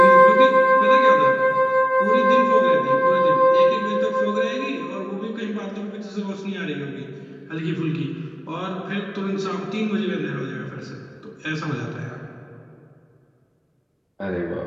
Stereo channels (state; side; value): identical; both; correlation 1.00